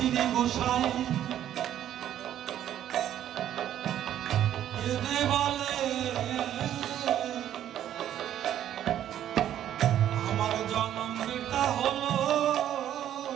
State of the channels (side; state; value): left; quieter; 11.1 dB